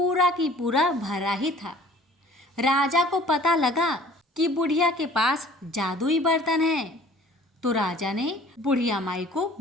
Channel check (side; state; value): both; normal; correlation 0.50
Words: की पूरा भरा ही था। राजा को पता लगा कि बुढ़िया के पास जादुई बर्तन है, तो राजा ने बुढ़िया माई को